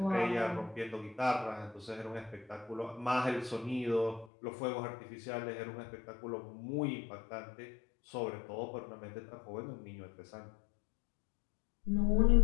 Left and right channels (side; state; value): right; drops out; at 4.2 s